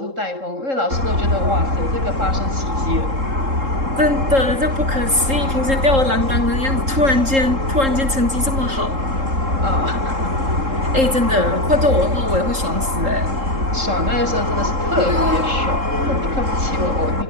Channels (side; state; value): left; late; 3.7 ms